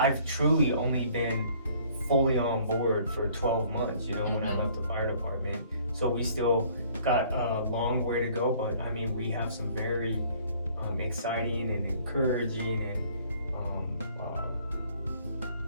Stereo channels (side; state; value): both; inverted; correlation -0.57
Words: truly only been fully on board for 12 months. You know, when I left the fire department, so we still got a long way to go. But I mean, we have some very exciting and encouraging and